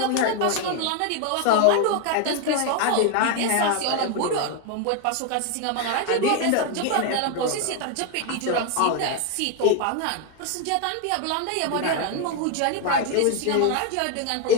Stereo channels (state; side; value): different; both; correlation 0.01